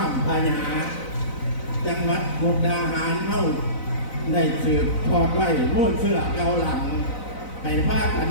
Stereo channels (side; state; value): right; late; 4.0 ms